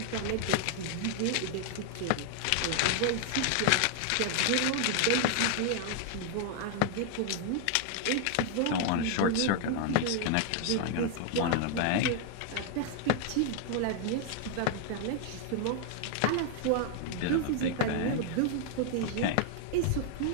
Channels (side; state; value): both; different; correlation 0.00